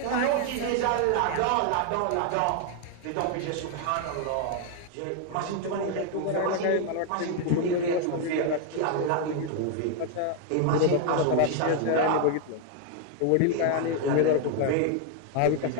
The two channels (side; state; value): both; different; correlation 0.00